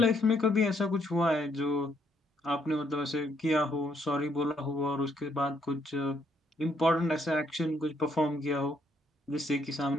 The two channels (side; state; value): both; normal; correlation 0.72